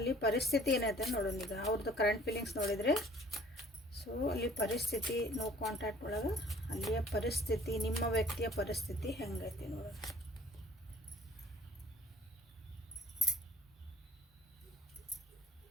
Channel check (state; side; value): normal; both; correlation 0.54